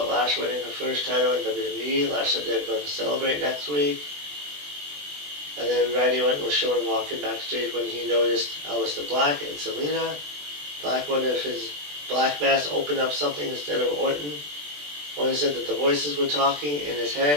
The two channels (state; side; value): late; left; 20 ms